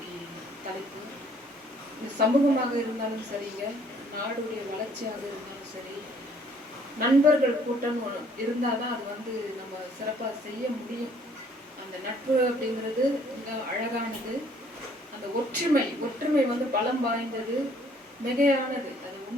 தலைப்பு. சமூகமாக இருந்தாலும் சரிங்க, நாடுடைய வளர்ச்சியாக இருந்தாலும் சரி, நண்பர்கள் கூட்டம் இருந்தால் தான் அது நம்ம சிறப்பாக செய்ய முடியும். அந்த நட்பு அப்படிங்கிறது மிக அழகானது. அந்த ஒற்றுமை பலம் வாய்ந்தது, மிகையானது. அது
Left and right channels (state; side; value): normal; both; correlation 0.61